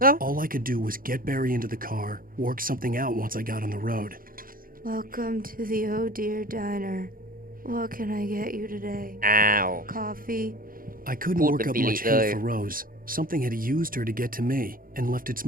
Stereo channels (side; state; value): left; late; 0.41 ms